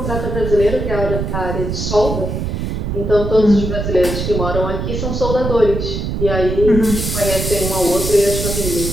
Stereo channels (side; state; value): right; noise; rumble, 3 dB below the sound